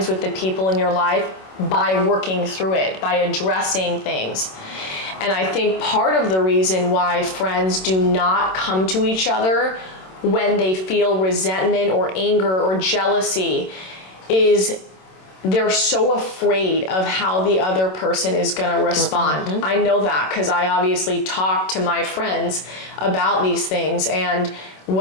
with the people in your life by working through it, by addressing things. And I think part of the reason why friends do not come to each other when they feel resentment or anger or jealousy is they're so afraid of how the other person is going to respond. I know that because I obviously talk to my friends about these things, and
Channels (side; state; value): right; late; 27 ms